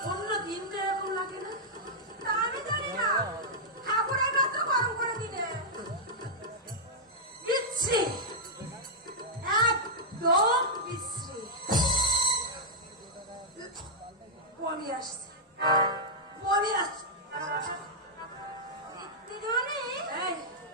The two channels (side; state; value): both; normal; correlation -0.07